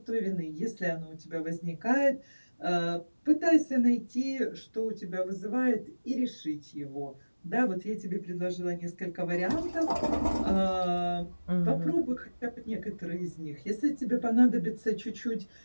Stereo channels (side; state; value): both; inverted; correlation -1.00